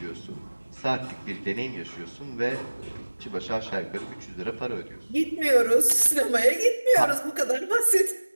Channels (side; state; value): both; inverted; correlation -1.00